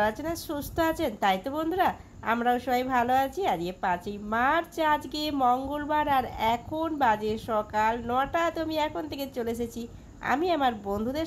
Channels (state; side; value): identical; both; correlation 1.00